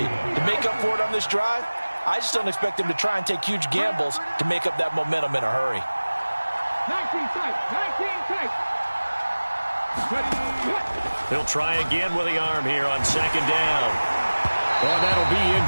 to make up for it on this drive. I just don't expect them to try and take huge gambles to make up that momentum in a hurry. 19 tight, 19 tight. He'll try again with the arm here on second down. Oh, that'll be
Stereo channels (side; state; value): both; inverted; correlation -1.00